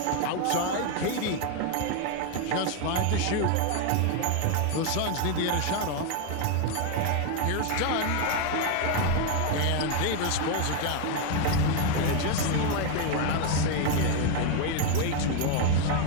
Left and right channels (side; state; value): both; different; correlation 0.01